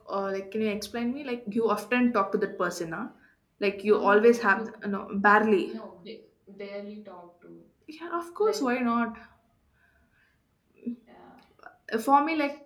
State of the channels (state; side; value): identical; both; correlation 1.00